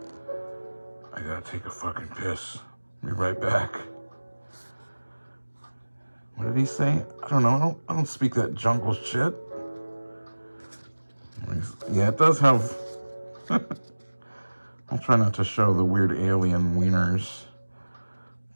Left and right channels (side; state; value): both; inverted; correlation -1.00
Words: I gotta take a fucking piss. Be right back. What did he say? I don't know. I don't speak that jungle shit. Yeah, it does have... I'll try not to show the weird alien wieners.